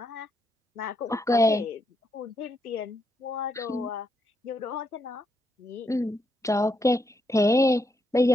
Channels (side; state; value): both; normal; correlation 0.79